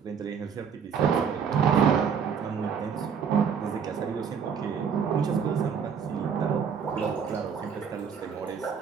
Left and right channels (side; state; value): left; quieter; 6.9 dB